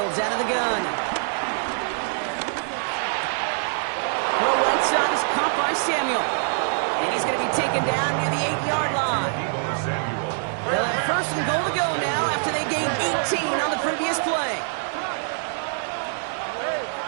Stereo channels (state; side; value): silent; left; digital silence